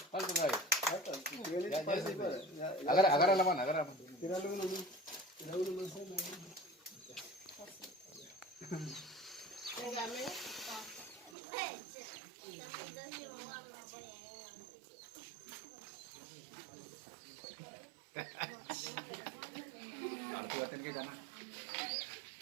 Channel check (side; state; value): left; drops out; at 11.4 s